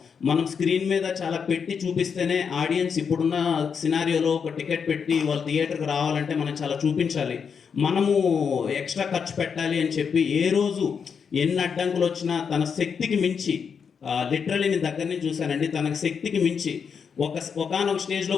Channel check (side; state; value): right; quieter; 6.5 dB